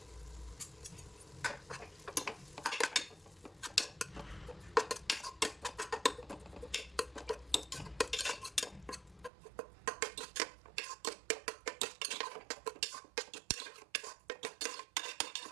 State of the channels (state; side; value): drops out; left; at 9.3 s